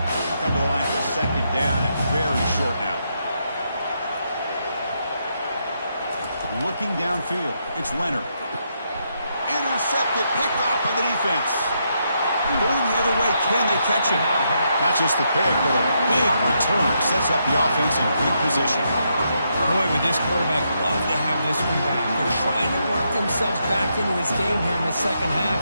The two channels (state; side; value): inverted; both; correlation -0.79